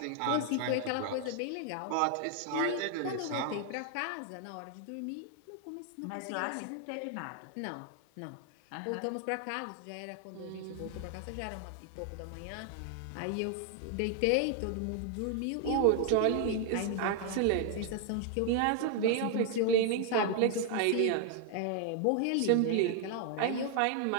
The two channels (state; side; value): different; both; correlation 0.00